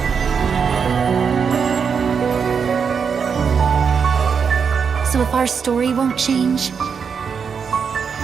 So if our story won't change,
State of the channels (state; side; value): quieter; left; 6.3 dB